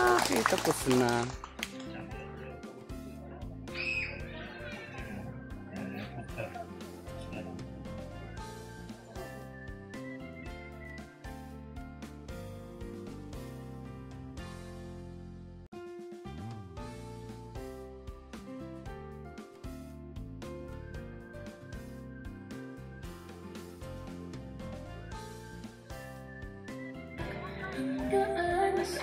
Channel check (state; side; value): identical; both; correlation 1.00